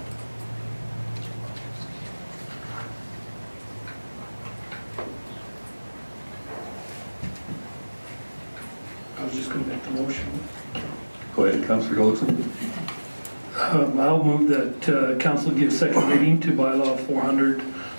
I was just going to make the motion. Go ahead, Councillor Goldson. I'll move that council give second reading to bylaw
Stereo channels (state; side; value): inverted; both; correlation -1.00